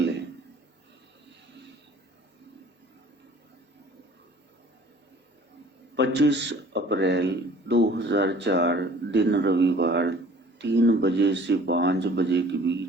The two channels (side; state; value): both; normal; correlation 0.50